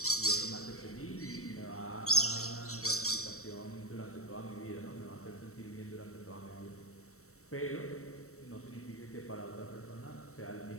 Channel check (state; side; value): late; right; 0.64 ms